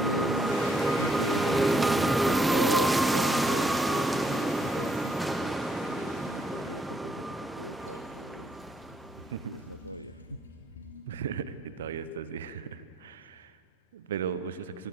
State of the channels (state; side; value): normal; both; correlation 0.73